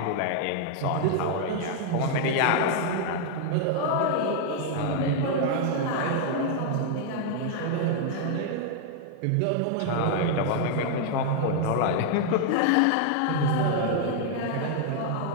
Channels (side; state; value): both; different; correlation 0.00